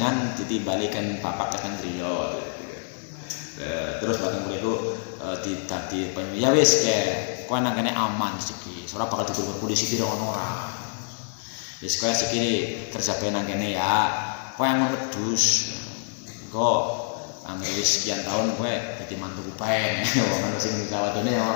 ditimbalikan papak keteng griya terus bareng mriku dadi ya wis ke kowe nang kene aman iki ora bakal ditutur polisi kira ono ora wis kowe sikile kerja bae nang kene ya kowe aman wedhus kok angger wis sekian tahun kowe dadi mantu bae wong ana sing jawatane ya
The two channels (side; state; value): right; silent; 61 dB below the other